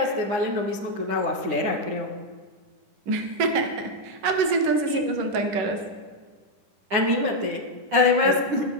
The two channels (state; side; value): late; left; 10 ms